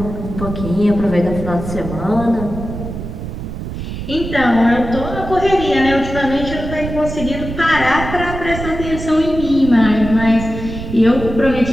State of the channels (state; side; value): noise; right; rumble, 8 dB below the sound